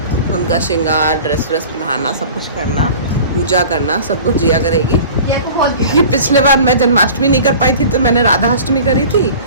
उनका श्रृंगार, ड्रेस पहनाना, सब कुछ करना, पूजा करना, सब कुछ जिया करेगी। ये पिछले बार मैं जन्माष्टमी नहीं कर पाई थी तो मैंने राधा अष्टमी करी थी।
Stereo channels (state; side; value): inverted; both; correlation -0.42